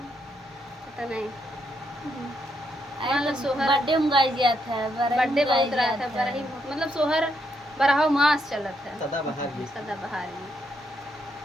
नहीं। सोहर बर्थडे में गाई दिया था, बर्थडे बहुत रहा था, बड़ा ही मतलब सोहर बरहा मास चलत है। सदाबहार भी सदाबहार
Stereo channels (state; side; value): normal; both; correlation 0.77